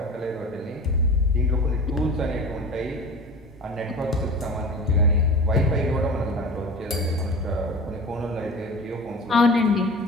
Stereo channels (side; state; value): both; normal; correlation 0.35